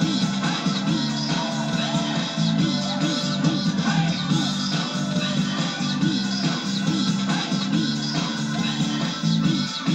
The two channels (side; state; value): both; identical; correlation 1.00